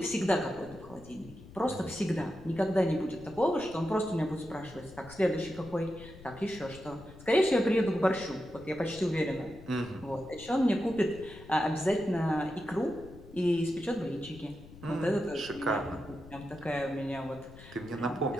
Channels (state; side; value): noise; left; rumble, 18 dB below the sound